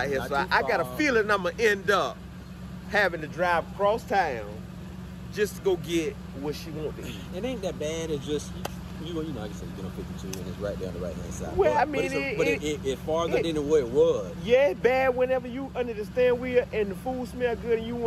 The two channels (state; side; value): identical; both; correlation 1.00